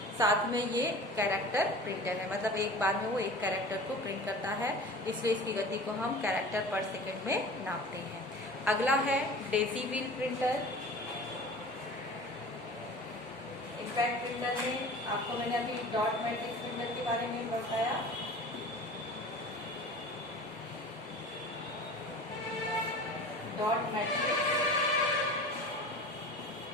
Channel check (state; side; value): normal; both; correlation 0.39